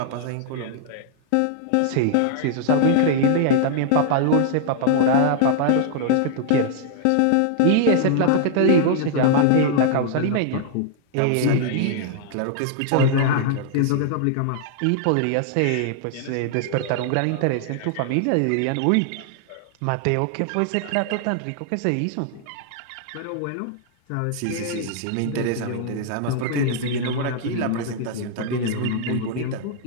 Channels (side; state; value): both; different; correlation -0.01